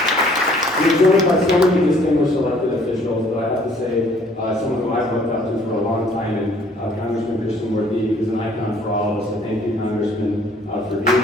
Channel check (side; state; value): both; normal; correlation 0.59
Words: We're joined by so many distinguished elected officials, but I have to say, someone who I've looked up to for a long time, and Congressman Krishnamurthy is an icon for all of us. So thank you, Congressman, for